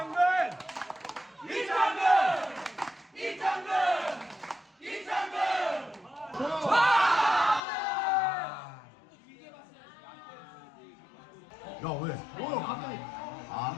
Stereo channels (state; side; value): drops out; right; at 7.6 s